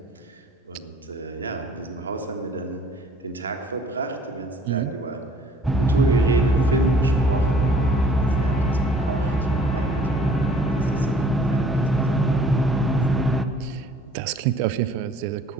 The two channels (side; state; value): both; normal; correlation 0.55